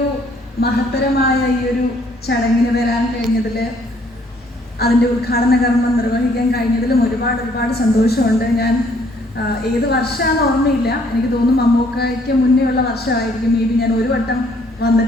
മഹത്തരമായ ഈ ഒരു ചടങ്ങിന് വരാൻ കഴിഞ്ഞതിൽ, അതിൻ്റെ ഉദ്ഘാടന കർമ്മം നിർവഹിക്കാൻ കഴിഞ്ഞതിലും ഒരുപാട് സന്തോഷമുണ്ട്. ഞാൻ ഏത് വർഷമാണെന്ന് ഓർമ്മയില്ല, എനിക്ക് തോന്നുന്നു മമ്മൂക്കയ്ക്ക് മുന്നേ ഉള്ള വർഷമായിരിക്കും. മേ ബി ഞാൻ ഒരു വട്ടം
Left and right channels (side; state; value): both; normal; correlation 0.64